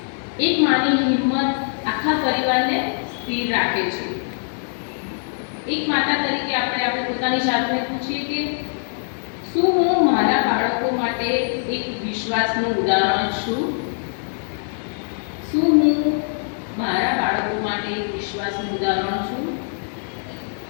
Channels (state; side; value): silent; right; digital silence